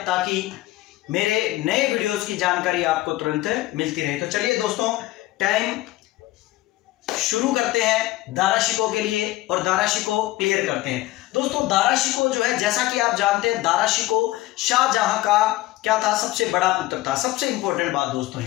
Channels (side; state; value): right; quieter; 17.4 dB